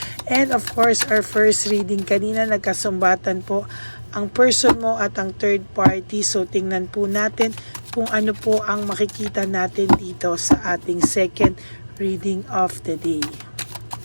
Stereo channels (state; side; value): inverted; both; correlation -1.00